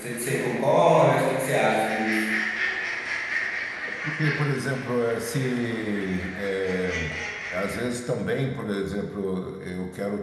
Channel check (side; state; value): both; identical; correlation 1.00